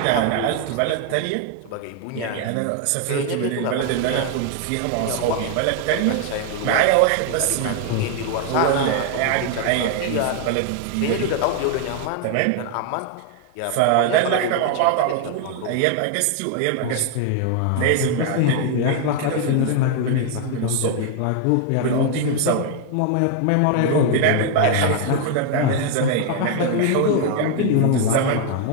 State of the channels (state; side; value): different; both; correlation 0.00